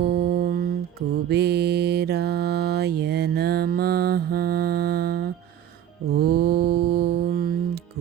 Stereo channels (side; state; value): left; quieter; 10.4 dB